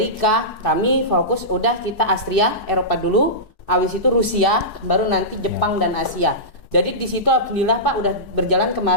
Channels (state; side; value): late; right; 4.7 ms